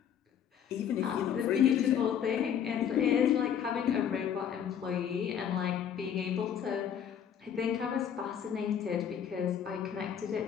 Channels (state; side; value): quieter; right; 8.7 dB